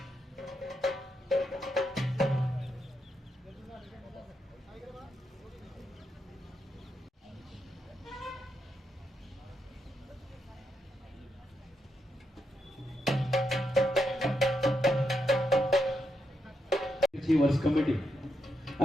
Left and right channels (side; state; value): both; normal; correlation 0.83